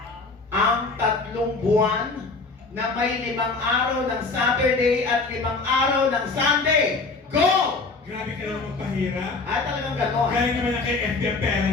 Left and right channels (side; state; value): right; quieter; 3.9 dB